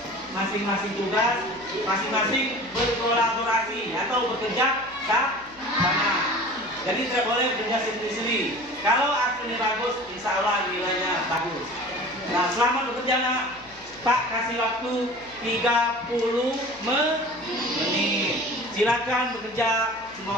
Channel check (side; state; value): left; noise; hum, 26 dB below the sound